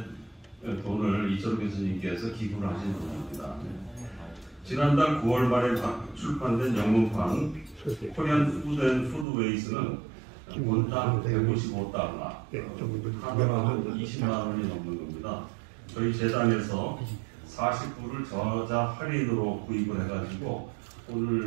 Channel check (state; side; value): drops out; left; at 9.2 s